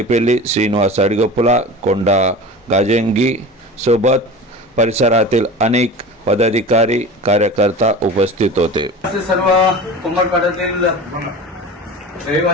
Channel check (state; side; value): normal; both; correlation 0.34